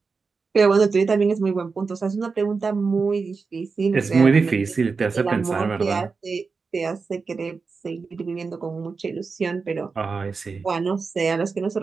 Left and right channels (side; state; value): left; quieter; 4.7 dB